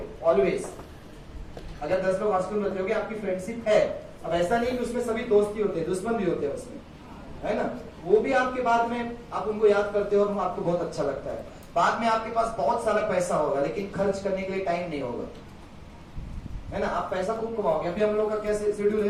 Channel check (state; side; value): identical; both; correlation 1.00